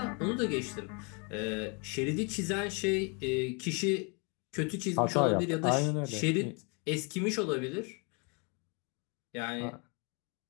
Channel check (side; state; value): right; quieter; 33.4 dB